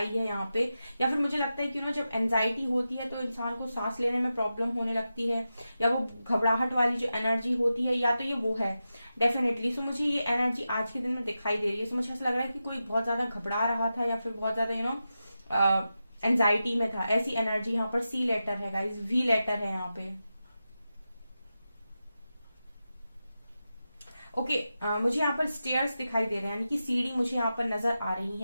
है यहाँ पे। या फिर मुझे लगता है कि ना, जब एंजाइटी होती है तो इंसान को सांस लेने में प्रॉब्लम होने लगती है, या वो घबराहट वाली जो एनर्जी होती है, या तो ये वो है डेफिनेटली। सो मुझे ये एनर्जी आज के दिन में दिखाई दे रही है। सो मुझे ऐसा लग रहा है कि कोई बहुत ज्यादा घबरा रहा था या फिर बहुत ज्यादा एंजाइटी में था, ऐसी एनर्जी यहाँ पर। सी लेटर है गाइज, वी लेटर है यहाँ पे। ओके, मुझे यहाँ पर स्टेयर्स दिखाई दे रहे हैं, यानी कि सीढ़ी मुझे यहाँ पर नजर आ रही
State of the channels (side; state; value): both; inverted; correlation -0.91